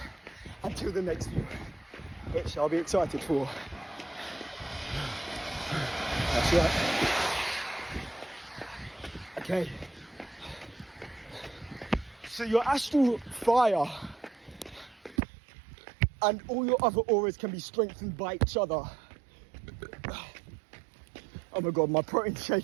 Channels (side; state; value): left; drops out; at 15.2 s